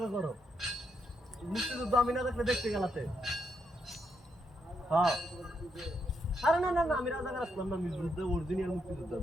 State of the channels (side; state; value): both; normal; correlation 0.79